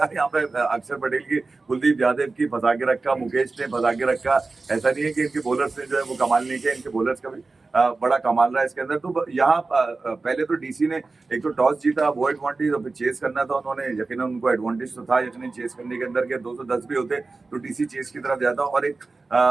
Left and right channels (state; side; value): quieter; left; 3.7 dB